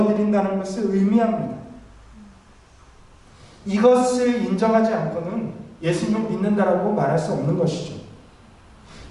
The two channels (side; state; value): both; identical; correlation 1.00